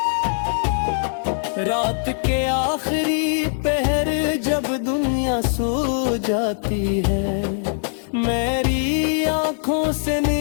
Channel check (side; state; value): right; silent; digital silence